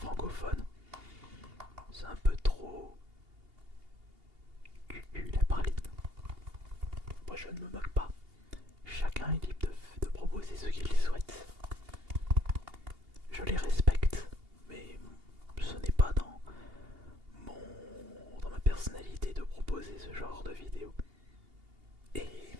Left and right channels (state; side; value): late; left; 2.8 ms